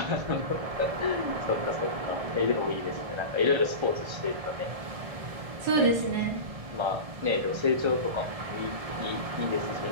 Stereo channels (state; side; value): late; left; 1.7 ms